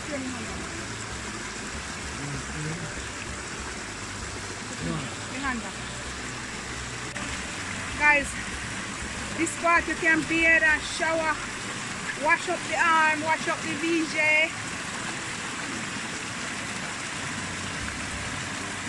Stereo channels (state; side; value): identical; both; correlation 1.00